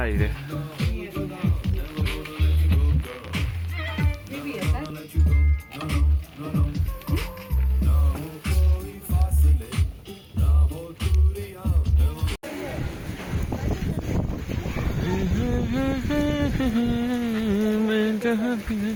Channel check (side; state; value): both; identical; correlation 1.00